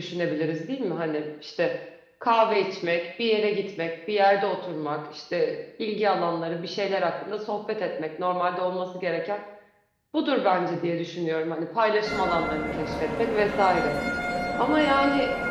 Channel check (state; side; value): identical; both; correlation 1.00